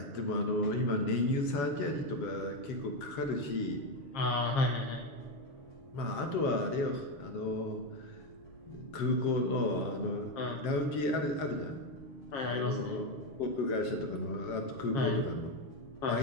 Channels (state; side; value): late; right; 7.6 ms